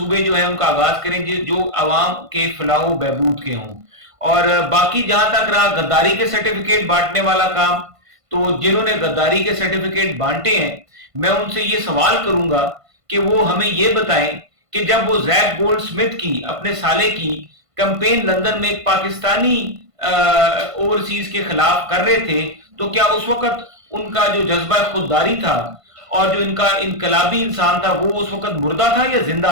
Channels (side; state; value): left; late; 1.5 ms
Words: जो है उनका आगाज करें जो आवाम के फलाह बहबूद के हों। और बाकी जहां तक रहा गद्दारी के सर्टिफिकेट बांटने वाला काम, तो जिन्होंने गद्दारी के सर्टिफिकेट बांटे हैं मैं उनसे ये सवाल करूंगा कि वो हमें ये बताएं कि जब वो जैक गोल्ड स्मिथ की, अपने साले की कैंपेन लंदन में एक पाकिस्तानी ओवरसीज के खिलाफ कर रहे थे, तो क्या उस वक्त उनका जो जज्बा खुददारी था और जो इनका इनकलाबी इंसान था वो उस वक्त मुर्दा था या